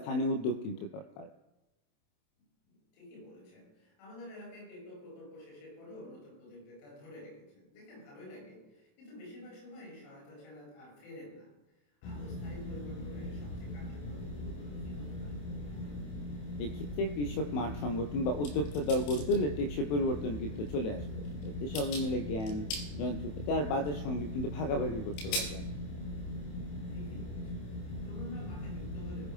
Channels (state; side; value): late; right; 27 ms